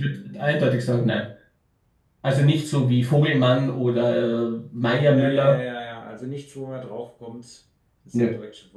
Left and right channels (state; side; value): identical; both; correlation 1.00